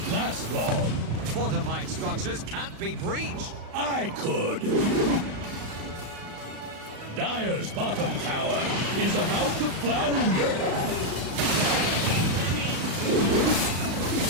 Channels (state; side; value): late; left; 35 ms